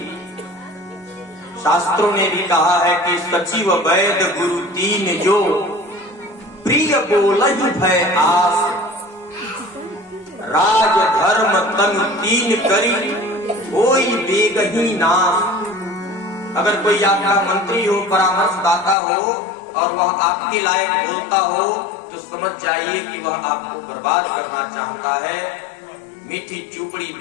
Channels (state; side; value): drops out; right; at 18.9 s